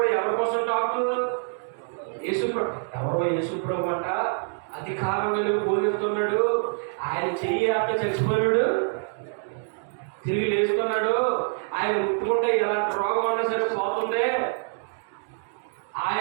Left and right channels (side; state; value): left; silent; 61 dB below the other